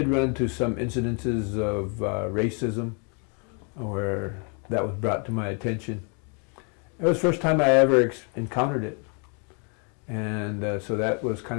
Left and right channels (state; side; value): quieter; right; 37.4 dB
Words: run into some incidences of racism where that was brought to my attention. It was the first time I ever encountered it. And so that was kind